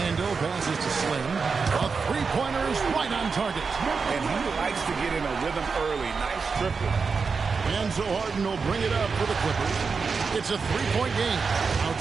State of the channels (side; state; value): left; quieter; 5.1 dB